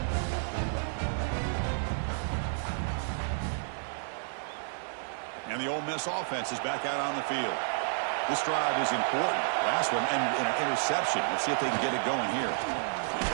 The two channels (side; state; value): left; silent; 57 dB below the other